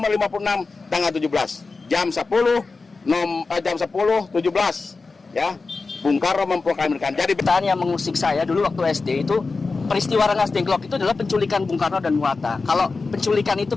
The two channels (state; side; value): quieter; right; 4.0 dB